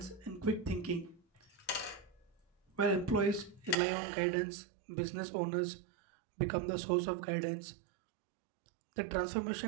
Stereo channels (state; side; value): drops out; left; at 3.8 s